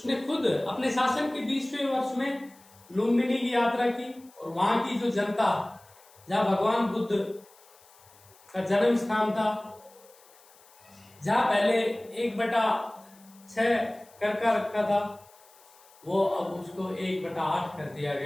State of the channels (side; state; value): left; noise; hiss, 27 dB below the sound